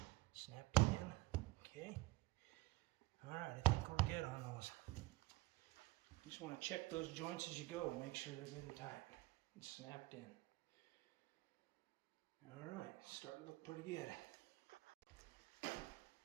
snapped in. Okay. Alright, I think we're good on those. You just want to check those joints as you go. Make sure they're good and tight and snapped in. Alright, starting to look pretty good.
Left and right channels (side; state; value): left; quieter; 20.1 dB